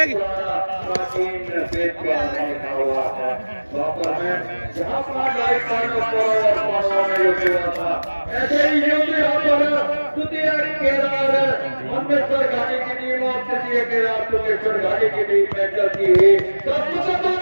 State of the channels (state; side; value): inverted; both; correlation -1.00